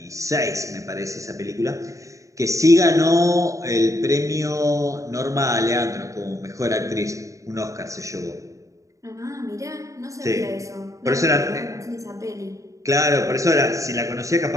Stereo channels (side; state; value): left; late; 0.16 ms